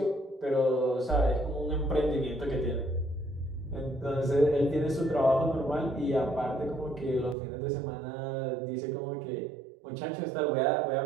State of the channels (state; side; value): drops out; left; at 7.4 s